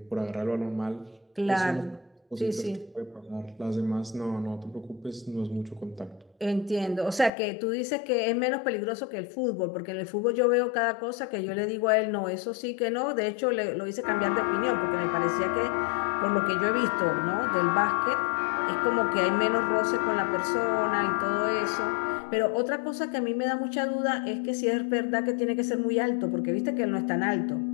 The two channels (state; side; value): drops out; right; at 7.3 s